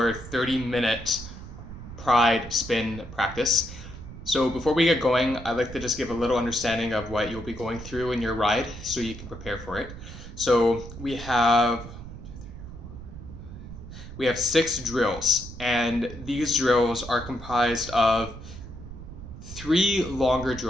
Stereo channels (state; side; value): noise; right; rumble, 13 dB below the sound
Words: 30-minute pride spin practice. So before we get going, I'd like to just give a little understanding of what you'll be going through in your ride so you can prepare for it. So we have 6 drills, and these drills are comprised of 3 longer